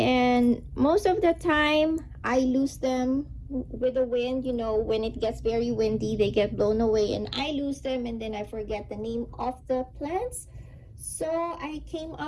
most of the time I lose them with the wind. You know, when it gets very windy, they get blown away and I lose them, and then I forget the name of the plants. So I came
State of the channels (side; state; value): both; identical; correlation 1.00